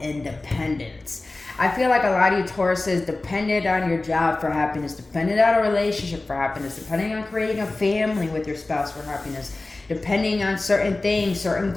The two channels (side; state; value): right; quieter; 3.1 dB